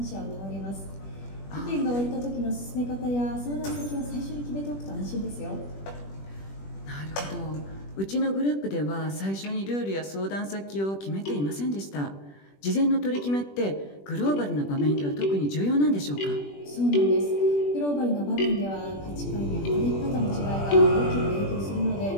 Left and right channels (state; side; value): late; right; 21 ms